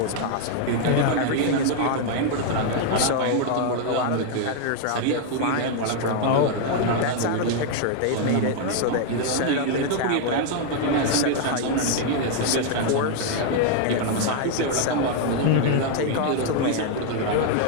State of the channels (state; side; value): different; both; correlation 0.00